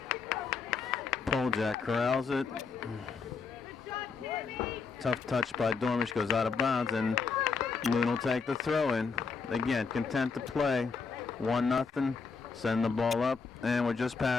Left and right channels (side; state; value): right; quieter; 5.1 dB